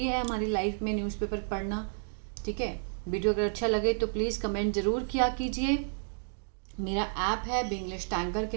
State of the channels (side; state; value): left; silent; digital silence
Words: है हमारी लाइफ में न्यूज़पेपर पढ़ना। ठीक है, वीडियो अगर अच्छा लगे तो प्लीज़ कमेंट ज़रूर किया कीजिए। मेरा ऐप है बिंग्लिश टैंकर के